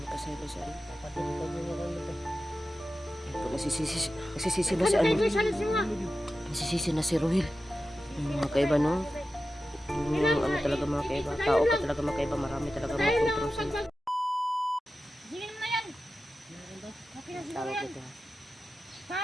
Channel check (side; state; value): both; normal; correlation 0.93